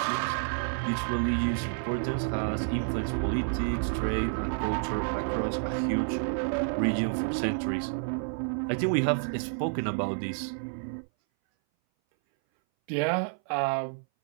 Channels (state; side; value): silent; left; 58 dB below the other